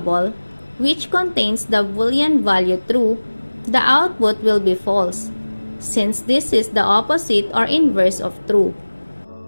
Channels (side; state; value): both; inverted; correlation -1.00